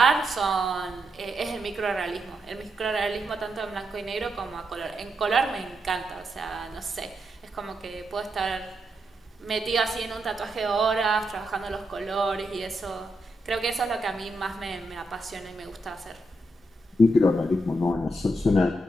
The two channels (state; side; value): normal; both; correlation 0.83